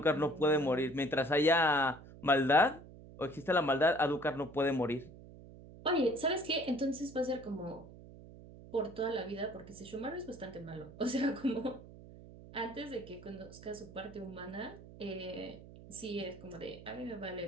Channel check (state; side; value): noise; right; hum, 17 dB below the sound